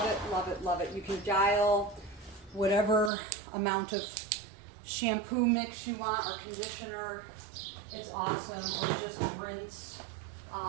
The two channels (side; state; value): left; drops out; at 3.1 s